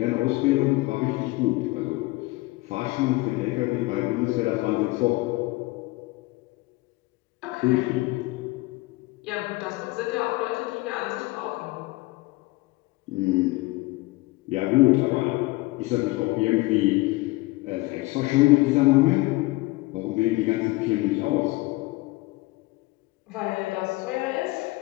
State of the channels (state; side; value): quieter; right; 21.5 dB